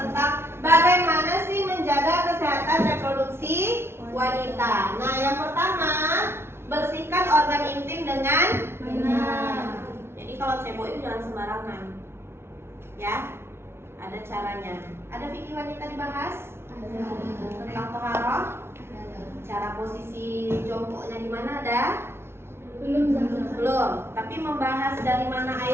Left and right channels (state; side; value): late; left; 0.12 ms